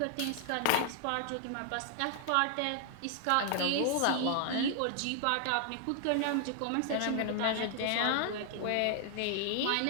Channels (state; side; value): different; both; correlation 0.00